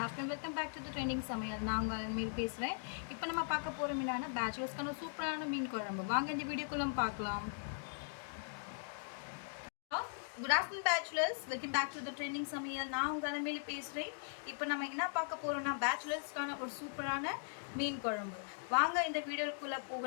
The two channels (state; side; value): silent; right; digital silence